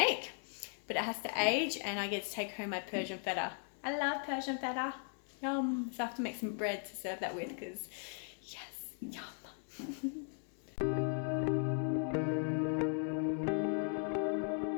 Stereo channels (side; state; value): right; silent; 53 dB below the other